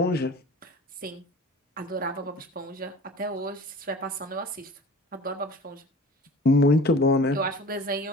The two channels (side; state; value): both; normal; correlation 0.41